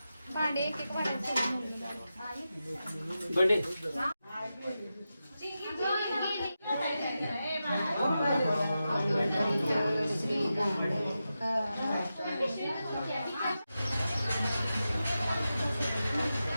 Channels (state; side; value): inverted; both; correlation -0.91